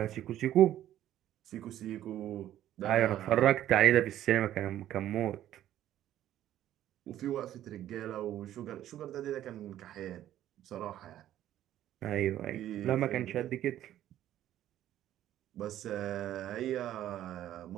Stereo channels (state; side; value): quieter; left; 12.4 dB